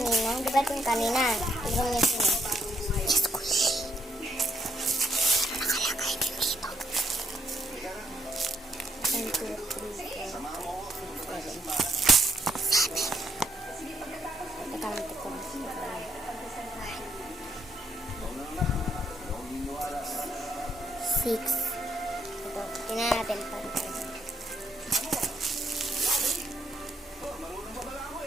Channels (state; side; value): normal; both; correlation 0.73